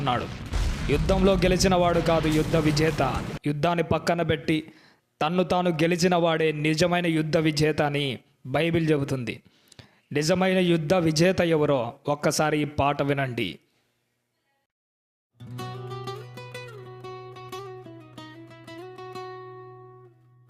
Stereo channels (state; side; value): identical; both; correlation 1.00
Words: యుద్ధంలో గెలిచిన వాడు కాదు యుద్ధ విజేత. యుద్ధాన్ని పక్కన పెట్టి తన్ను తాను గెలిచిన వాడే నిజమైన యుద్ధ విజేత అని బైబిల్ చెబుతుంది. నిజమైన యుద్ధ విజేత ఎవరో ఒక్కసారి ఈ పాట వినండి.